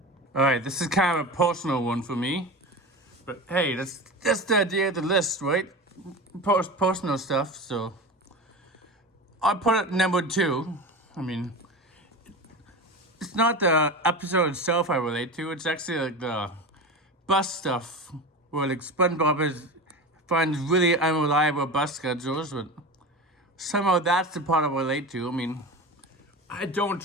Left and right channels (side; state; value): both; normal; correlation 0.28